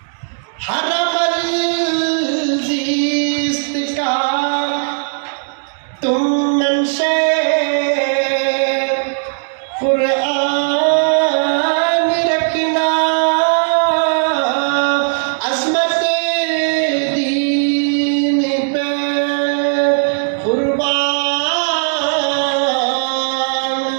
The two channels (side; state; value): left; silent; digital silence